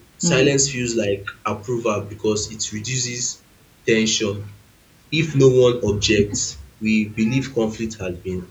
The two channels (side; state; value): both; identical; correlation 1.00